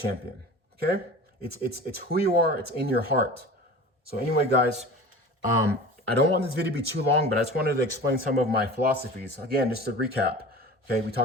Okay? It's who you are. It's in your heart. So anyway, guys, I don't want this video to be too long, but I just wanted to explain some of my philosophies. Again, just to recap. Okay, we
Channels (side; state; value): both; normal; correlation 0.37